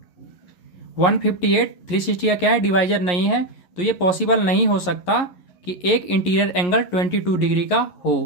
158 360 का क्या है, डिवाइजर नहीं है। तो ये पॉसिबल नहीं हो सकता कि एक इंटीरियर एंगल 22 डिग्री का हो।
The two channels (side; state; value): right; late; 11 ms